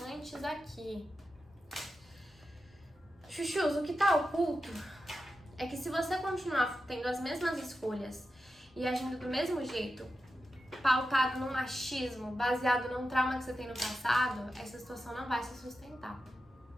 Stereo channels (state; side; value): normal; both; correlation 0.90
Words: aqui. Chuchus, o que tá oculto é que se você continuar tendo as mesmas escolhas e agindo do mesmo jeito pautado no machismo, baseado num trauma que você tem no passado, essa situação não vai se sustentar.